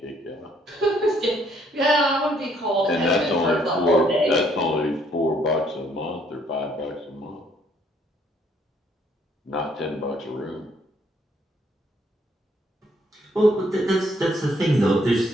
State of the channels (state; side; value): normal; both; correlation 0.67